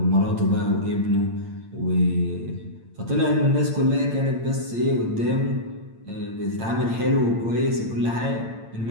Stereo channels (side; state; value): left; late; 8.8 ms